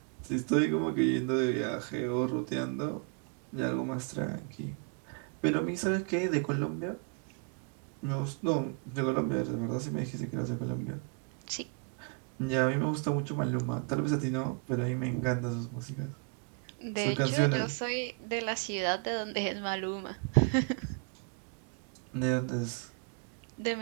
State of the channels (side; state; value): left; quieter; 34.8 dB